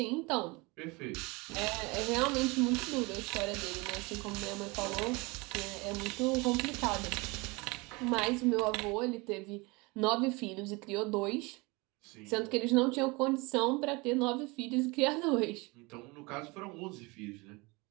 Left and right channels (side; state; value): left; quieter; 25.8 dB